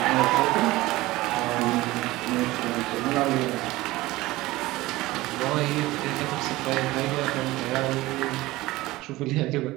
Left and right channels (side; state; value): left; quieter; 18.8 dB